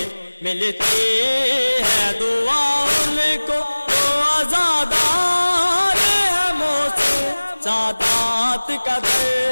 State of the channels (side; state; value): both; inverted; correlation -1.00